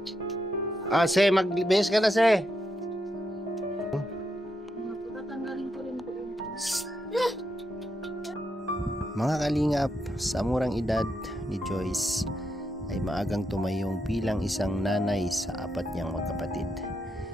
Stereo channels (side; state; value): both; normal; correlation 0.82